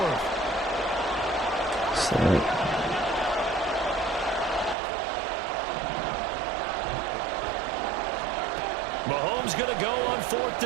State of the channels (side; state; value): left; drops out; at 4.8 s